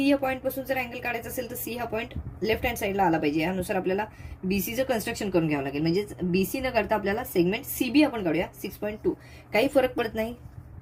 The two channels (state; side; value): identical; both; correlation 1.00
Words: या पॉईंट पासून जर अँगल काढायचा असेल तर C हा पॉईंट लेफ्ट हँड साईडला आला पाहिजे. यानुसार आपल्याला BCचं कन्स्ट्रक्शन करून घ्यावं लागेल. म्हणजे BC न करता आपल्याला सेगमेंट CB आपण काढूया 6.2. काही फरक पडत नाही,